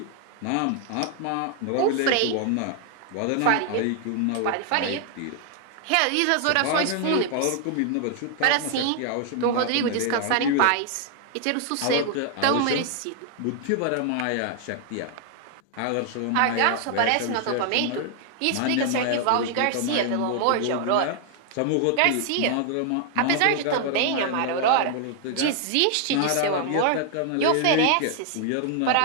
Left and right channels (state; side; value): different; both; correlation 0.00